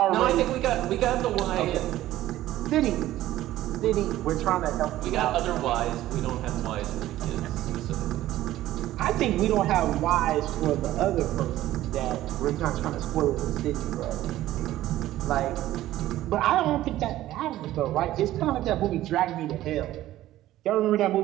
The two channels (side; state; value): left; quieter; 14.6 dB